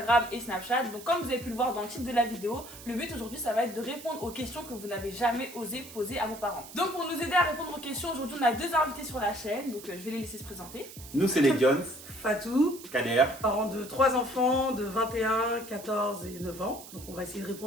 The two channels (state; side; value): noise; right; hiss, 16 dB below the sound